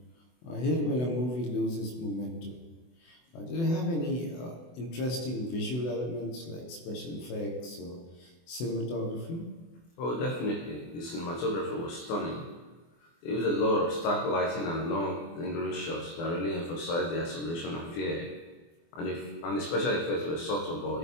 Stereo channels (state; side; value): late; right; 24 ms